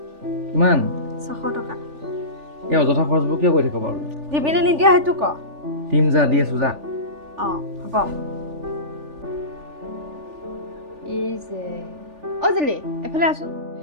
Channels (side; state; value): left; late; 3.4 ms